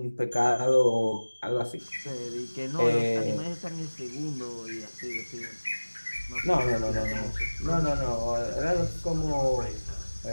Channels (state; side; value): inverted; both; correlation -1.00